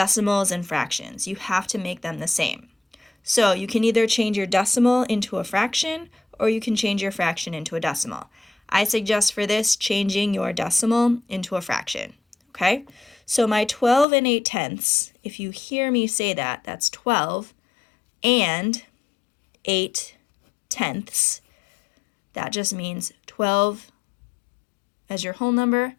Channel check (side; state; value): right; drops out; at 14.1 s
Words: and fractions. You have to make them the same. So you can either change your decimal into a fraction or you can change your fraction into a decimal. I suggest for this changing your decimal into a fraction, okay? So my 12 and 8/10, if you hear me say that, that's 12 and 8/10. That just means 12 as your whole number